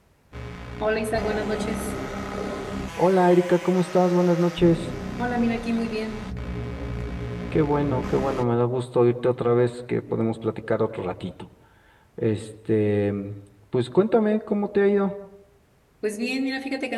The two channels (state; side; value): identical; both; correlation 1.00